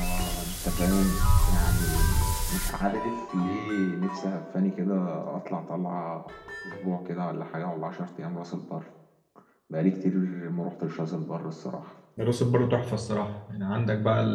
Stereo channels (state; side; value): identical; both; correlation 1.00